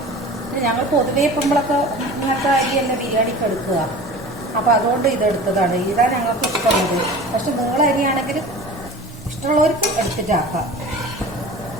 ഞങ്ങൾ പൊതുവേ ഇപ്പോഴൊക്കെ ഇങ്ങനത്തെ അരി തന്നെ ബിരിയാണിക്ക് എടുക്കുക. അപ്പോൾ അതുകൊണ്ട് ഇതെടുത്തതാണ്. ഇതാണ് ഞങ്ങൾക്ക് ഇഷ്ടമുള്ളത്. പക്ഷെ നീള അരിയാണെങ്കിൽ ഇഷ്ടമുള്ളവർക്ക് എടുത്തിട്ടാക്കാം.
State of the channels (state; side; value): normal; both; correlation 0.38